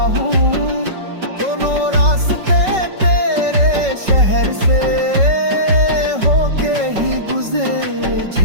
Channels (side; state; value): left; late; 5.3 ms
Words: हूँ। दोनों रास्ते तेरे शहर से होके ही